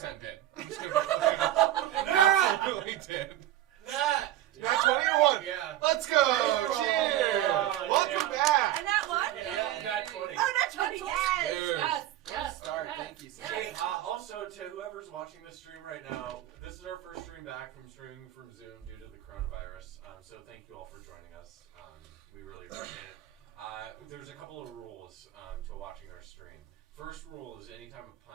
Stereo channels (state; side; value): quieter; left; 13.6 dB